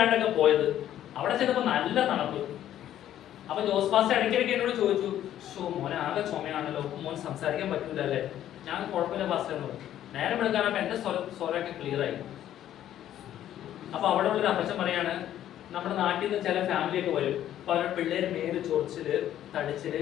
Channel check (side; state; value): right; quieter; 11.7 dB